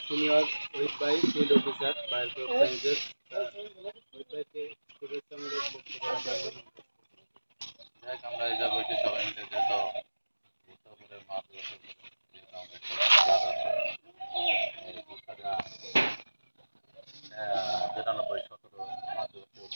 সিনিয়র ওহিদ ভাই, field officer biology sciences. Ohid ভাইকে শুভেচ্ছামূলক বক্তব্য রাখবেন। আমরা এই যাবো সবাই মিলে যত উত্তরপুরের মাঠ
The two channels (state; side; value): inverted; both; correlation -1.00